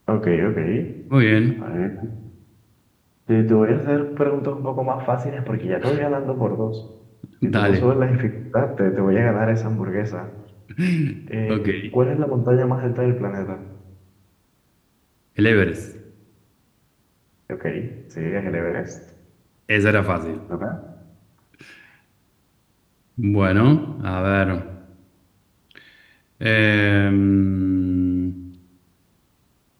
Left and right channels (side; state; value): both; identical; correlation 1.00